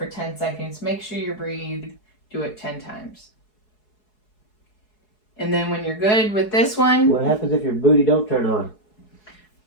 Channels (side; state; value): right; late; 4.7 ms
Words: 10 seconds. Make sure you breathe. Do it 10 times. And then when you're good with this one. What happens if your booty don't turn on?